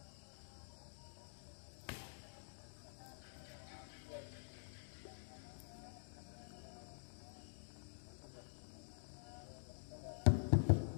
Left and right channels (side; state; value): right; silent; digital silence